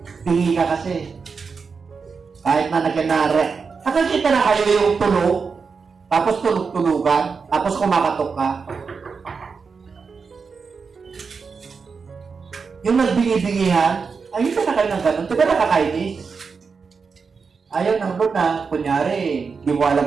Pingi ka kasi. Kahit na nagkanara. Nakakita na kayo yung tulog, tapos tulog-tulugan, tapos kumakatok ka. Yung nagbingi-bingihan, ayun ka na kayo ng ganun. Diba nakakainis? Ayaw ng Lord na, kunyari, di mo alam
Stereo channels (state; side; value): quieter; left; 5.3 dB